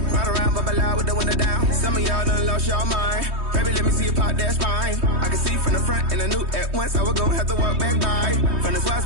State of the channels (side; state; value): left; late; 3.2 ms